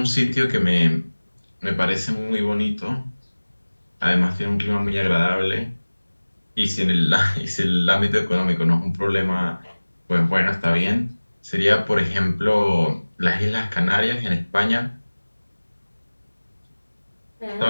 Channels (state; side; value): inverted; both; correlation -1.00